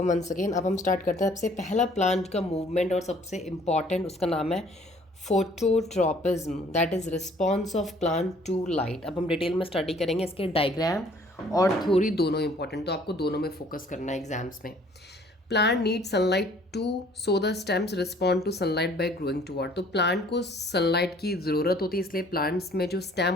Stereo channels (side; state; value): both; normal; correlation 0.57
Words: once again. अब हम start करते हैं। सबसे पहला प्लांट का मूवमेंट और सबसे इम्पॉर्टेंट उसका नाम है phototropism, that is response of plant to light. अब हम डिटेल में स्टडी करेंगे। इसके डायग्राम और थ्योरी दोनों इंपॉर्टेंट, तो आपको दोनों में फोकस करना है एग्जाम्स में। Plant need sunlight to so the stems respond to sunlight by growing toward. तो प्लांट को सनलाइट की ज़रूरत होती है, इसलिए प्लांट्स में जो स्टेम